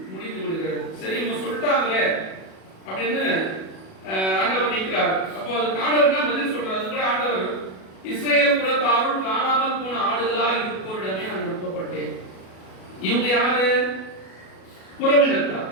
முடிந்து விடுகிறது. சரி, இவங்க சொல்லிட்டாங்களே அப்படின்னு ஆண்டவர் நிற்கிறார். அப்போ அதுக்கு ஆண்டவர் தான் பதில் சொல்றாரு. அது கூட ஆண்டவர், இஸ்ரேல் குலத்தாருள் காணாமல் போன ஆடுகளாய் இருப்போரிடமே நான் அனுப்பப்பட்டேன். இவங்க யாரு? புறவினத்தார்,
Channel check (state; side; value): late; right; 37 ms